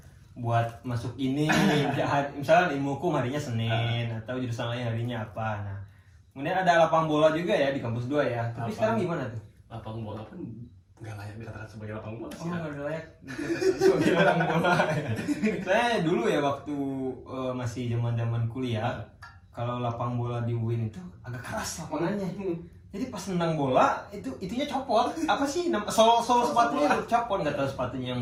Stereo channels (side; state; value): both; identical; correlation 1.00